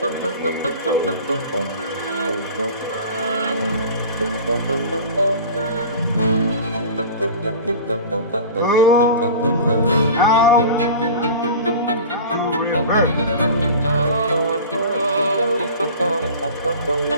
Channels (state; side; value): inverted; both; correlation -0.37